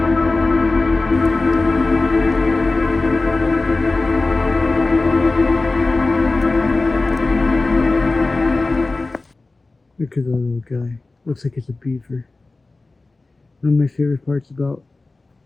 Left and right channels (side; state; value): right; quieter; 3.4 dB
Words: Look at that little guy. Looks like it's a beaver. One of my favorite parts about